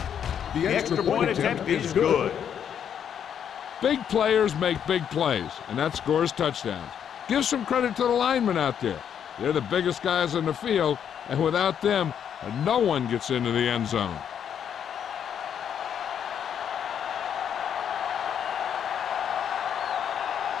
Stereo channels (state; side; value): quieter; right; 8.6 dB